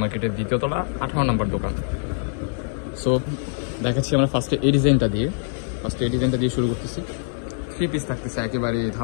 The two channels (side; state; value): right; silent; 63 dB below the other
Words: মার্কেটের দ্বিতীয় তলা, 18 নম্বর দোকান। সো দেখাচ্ছি আমরা ফার্স্টে এই ডিজাইনটা দিয়ে শুরু করতেছি। 3 পিস থাকতেছে, একেবারে